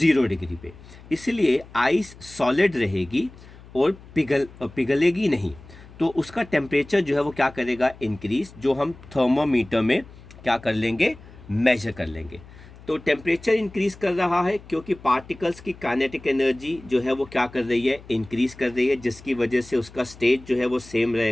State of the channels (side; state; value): left; noise; hum, 20 dB below the sound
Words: डिग्री पे। इसलिए आइस सॉलिड रहेगी और पिघलेगी नहीं, तो उसका टेम्परेचर जो है वो क्या करेगा, इंक्रीज, जो हम थर्मोमीटर में क्या कर लेंगे, मेजर कर लेंगे। तो टेम्परेचर इंक्रीज कर रहा है क्योंकि पार्टिकल्स की काइनेटिक एनर्जी जो है वो क्या कर रही है, इंक्रीज कर रही है, जिसकी वजह से उसका स्टेट जो है वो सेम